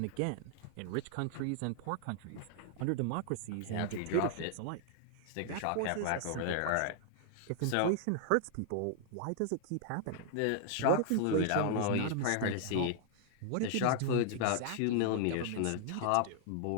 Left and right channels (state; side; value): different; both; correlation 0.00